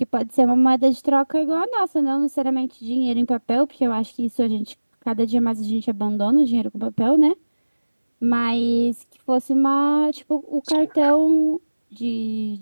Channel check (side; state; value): both; inverted; correlation -1.00